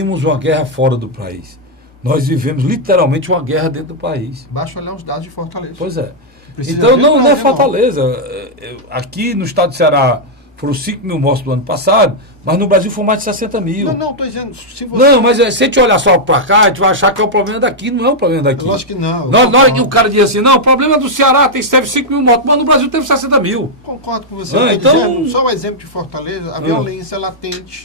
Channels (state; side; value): normal; both; correlation -0.04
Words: uma guerra fora do país. Nós vivemos literalmente uma guerra dentro do país. Basta olhar os dados de Fortaleza. Pois é. Então não é Fortaleza. Aqui no estado do Ceará foram 5 mil mortos do ano passado, mas no Brasil foram mais de 60 mil. Não, estou dizendo... Se você... Não, mas se a gente olhar só para cá, a gente vai achar que é o problema daqui, não é o problema daqui. Lógico que não. Na hora que o cara diz assim, não, o problema do Ceará teve 5 mil mortos, mas no Brasil teve 60 mil. Concordo com você. Então... dizendo, só o exemplo de Fortaleza, a violência